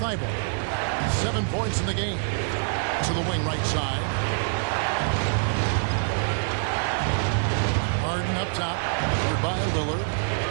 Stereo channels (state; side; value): silent; left; digital silence